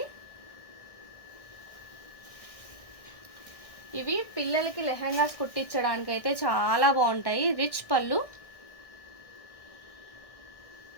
ఇవి పిల్లలకి లెహంగాస్ కుట్టించడానికి అయితే చాలా బాగుంటాయి. రిచ్ పళ్ళు,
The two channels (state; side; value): late; right; 1.6 ms